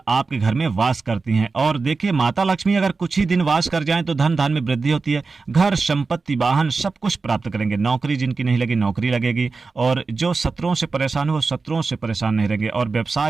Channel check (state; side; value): quieter; left; 4.2 dB